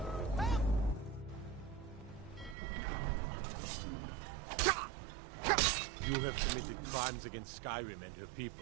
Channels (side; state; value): left; drops out; at 2.6 s